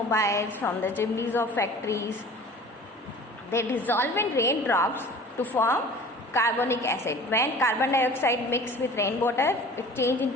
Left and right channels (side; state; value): both; normal; correlation 0.44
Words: from the chimneys of factories, they dissolve in raindrops to form carbonic acid. When carbon dioxide mix with rainwater, it change